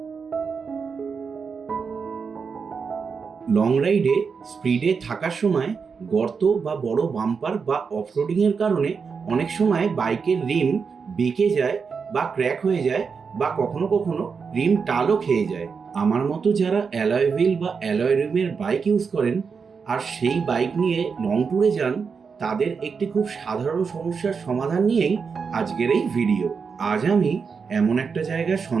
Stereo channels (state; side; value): quieter; left; 5.6 dB